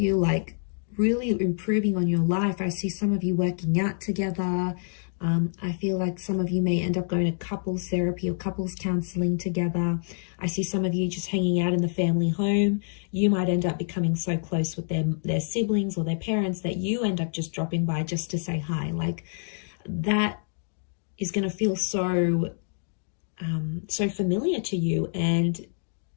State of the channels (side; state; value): right; silent; digital silence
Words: like really improving on your life. I see some of you working out together. I feel like some of you may end up going to couples therapy or couples counseling together. I see some of you just hanging out in the family home. You might end up becoming so close with their siblings or their parents that you end up just dropping by just to say hi. Like, that is going to feel so familiar to you, and